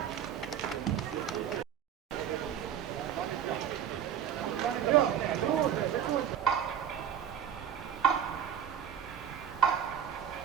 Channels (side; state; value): left; quieter; 9.0 dB